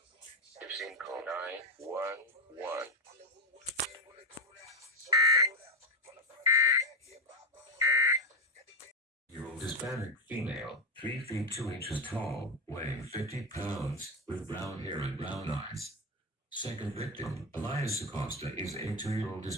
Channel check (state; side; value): normal; both; correlation 0.08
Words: If seen, call 911. Year-old Hispanic female, 3 feet 2 inches tall, weighing 50 pounds, with brown hair and brown eyes. Second victim, Elias Acosta, is a 2-year-old